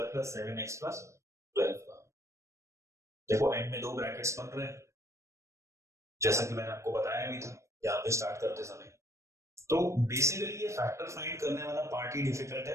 plus 7x plus 12 का। देखो एंड में 2 ब्रैकेट्स बन रहे हैं जैसा कि मैंने आपको बताया भी था यहाँ पे स्टार्ट करते समय। तो बेसिकली ये फैक्टर फाइंड करने वाला पार्ट ही डिफिकल्ट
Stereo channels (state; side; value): late; left; 0.14 ms